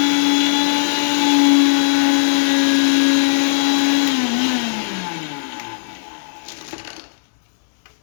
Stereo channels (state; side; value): silent; right; digital silence